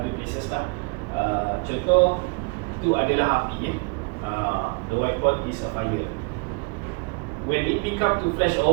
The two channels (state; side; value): quieter; left; 30.2 dB